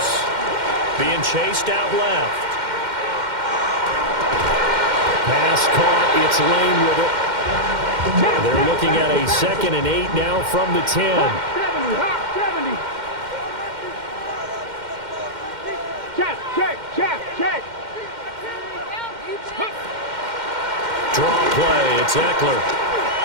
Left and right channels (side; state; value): left; late; 2.1 ms